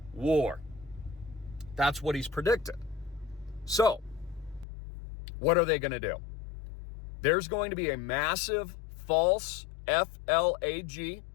war. That's what he's predicted. So, what are they going to do? There's going to be a massive false FLAG,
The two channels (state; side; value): drops out; right; at 4.7 s